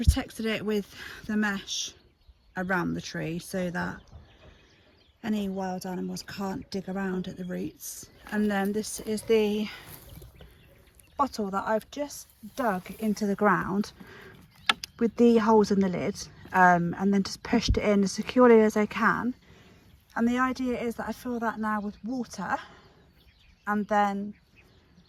it with the mesh around the tree so that any wild animals can't dig around at the roots. And then this is the bottle that I've just dug into the ground with the holes in the lid, and then just pushed it in as securely as I can. And the idea is that I fill that now with water, and then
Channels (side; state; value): both; identical; correlation 1.00